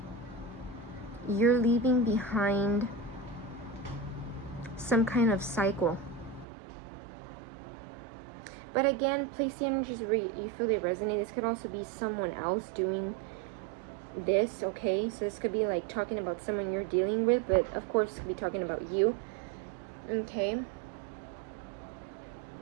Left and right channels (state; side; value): drops out; left; at 6.5 s